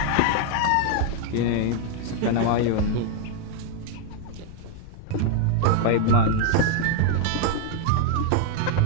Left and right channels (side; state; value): both; different; correlation 0.01